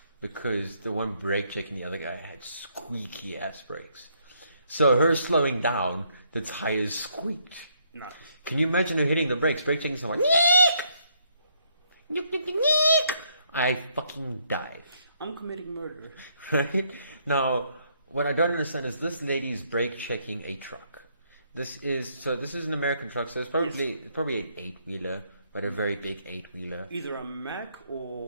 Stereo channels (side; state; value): both; inverted; correlation -0.71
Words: because the one brake checking the other guy had squeaky ass brakes. So her slowing down, the tires squeaked. No. Can you imagine her hitting the brakes, brake checking someone? Neek! I fucking die. I'm committing murder. Right? Now, what I don't understand is this lady's brake checking a truck. This is an American truck, so it's probably an 8-wheeler, but a very big 8-wheeler. Either a Mack